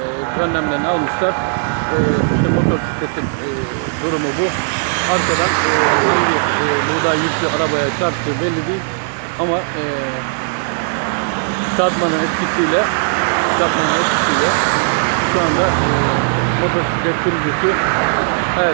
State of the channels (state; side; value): silent; left; 66 dB below the other